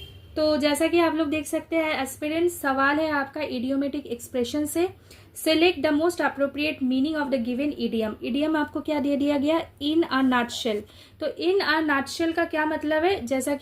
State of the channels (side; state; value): both; identical; correlation 1.00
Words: तो जैसा कि आप लोग देख सकते हैं एस्पिरेंट्स, सवाल है आपका इडियोमेटिक एक्सप्रेशन से, select the most appropriate meaning of the given idiom. Idiom आपको क्या दे दिया गया, इन अ नटशेल, तो इन अ नटशेल का क्या मतलब है, जैसा